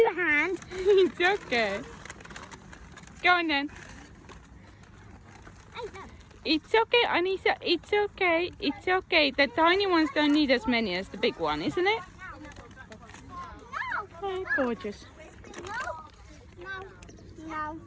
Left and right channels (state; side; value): identical; both; correlation 1.00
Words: hands. It's okay. Go on then. It's okay, Anissa, it's okay, it's okay. The tiny ones don't need as many as the big one, isn't it? Oh, gorgeous. No.